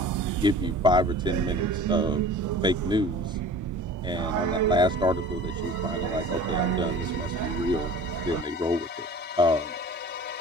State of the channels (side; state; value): both; normal; correlation 0.42